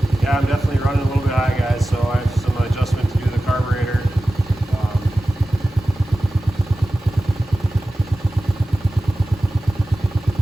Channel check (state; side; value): normal; both; correlation 0.95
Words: Yeah, I'm definitely running a little bit high, guys, so I have some adjustment